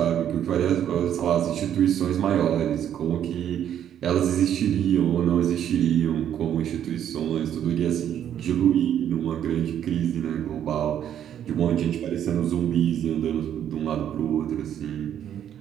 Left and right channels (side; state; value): left; quieter; 10.0 dB